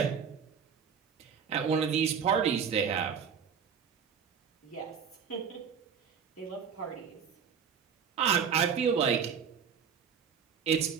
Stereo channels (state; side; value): quieter; left; 7.0 dB